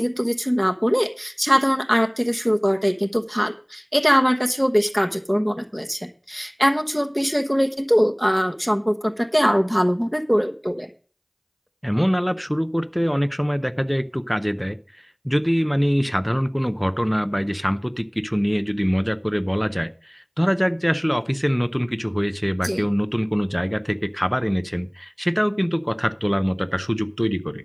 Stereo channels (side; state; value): both; identical; correlation 1.00